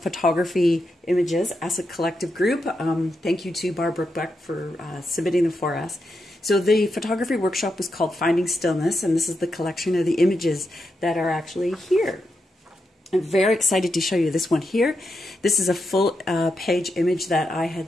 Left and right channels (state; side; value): normal; both; correlation 0.85